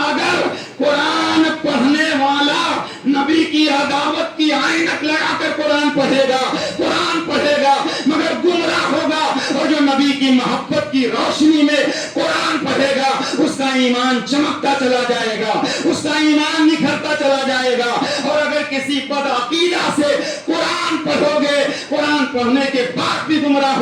قرآن پڑھنے والا نبی کی عداوت کی عینک لگا کر قرآن پڑھے گا مگر گمراہ ہوگا، اور جو نبی کی محبت کی روشنی میں قرآن پڑھے گا اس کا ایمان چمکتا چلا جائے گا، اس کا ایمان نکھرتا چلا جائے گا۔ اور اگر کسی بدعقیدہ سے قرآن پڑھو گے، قرآن پڑھنے کے بعد بھی گمراہ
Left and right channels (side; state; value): both; identical; correlation 1.00